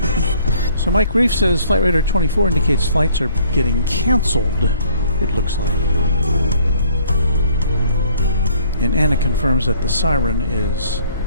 So Mike Reef says Flight Radar 24 indicates flights are getting canceled, it looks like. And Anna confirms that the siren is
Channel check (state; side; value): inverted; both; correlation -0.60